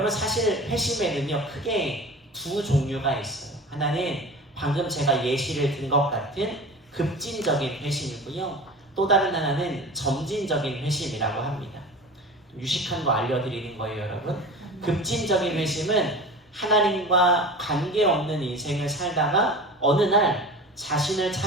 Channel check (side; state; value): both; normal; correlation 0.34